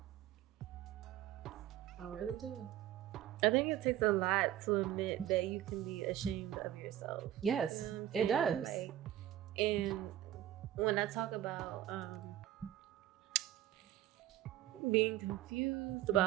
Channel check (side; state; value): left; quieter; 12.7 dB